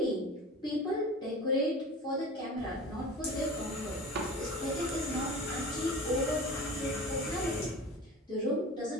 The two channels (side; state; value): both; normal; correlation 0.36